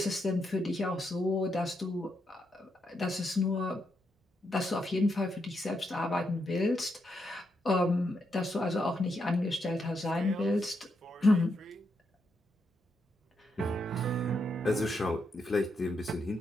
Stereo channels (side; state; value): both; normal; correlation 0.81